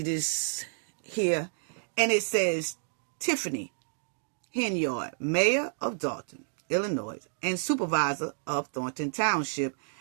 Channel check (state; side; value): silent; left; digital silence